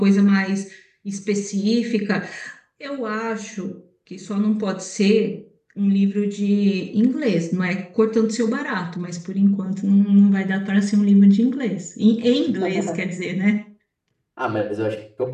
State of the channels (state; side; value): identical; both; correlation 1.00